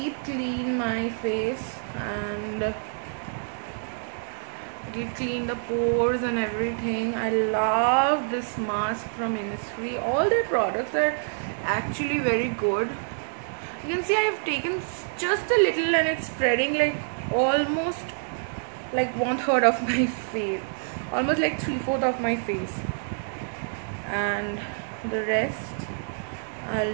clean my face, and it will clean the pores and everything. I love this mask from Innisfree. All their products are actually very good. You can see I have taken just a little and it's spreading like almost like 1/3 of my face, almost like 3/4 of my face, and the rest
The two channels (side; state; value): left; silent; digital silence